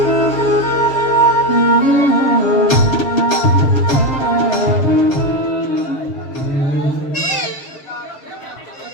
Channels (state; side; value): late; right; 7.3 ms